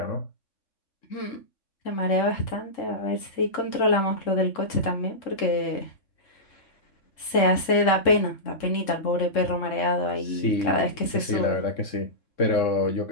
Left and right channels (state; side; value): late; right; 3.7 ms